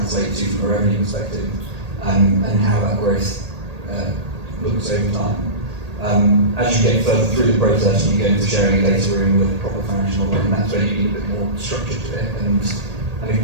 to from a revenue perspective, and how that growth looks over time. As you get further through the process, and you go into sharing a data room with a proper financial model, and that's where you need a bit more structure to it. And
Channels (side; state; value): left; late; 1.8 ms